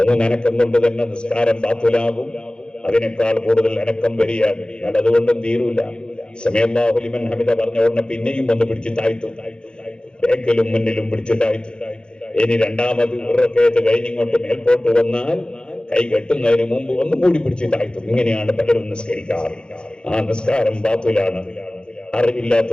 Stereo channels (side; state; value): right; late; 0.050 ms